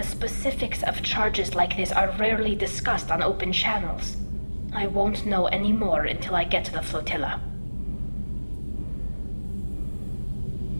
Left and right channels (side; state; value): both; inverted; correlation -1.00